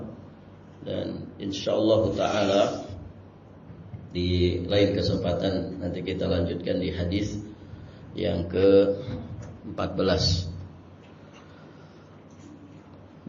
Dan insyaallah ta'ala di lain kesempatan nanti kita lanjutkan di hadis yang ke-14.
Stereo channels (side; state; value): both; identical; correlation 1.00